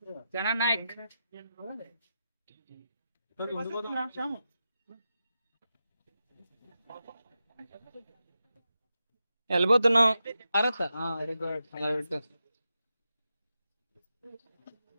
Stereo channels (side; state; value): both; inverted; correlation -0.89